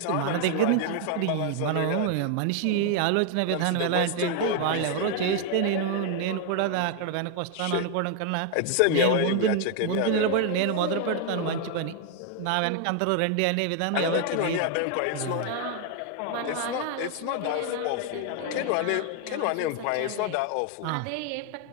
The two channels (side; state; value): both; different; correlation 0.00